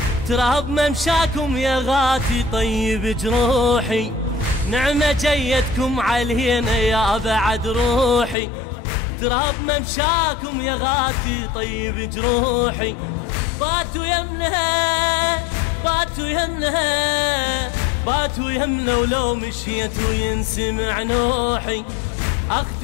تراب ممشاكم يا غاتي طيب جروحي. نعمة جيتكم علينا يا بعد روحي، تراب ممشاكم يا غاتي طيب جروحي. باتوا يمنها باتوا يمنها باتوا يمنا، ولو مشيت وينسمع نوحي.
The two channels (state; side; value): drops out; right; at 8.3 s